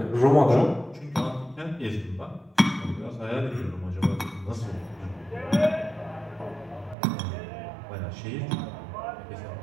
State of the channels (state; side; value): drops out; left; at 7.0 s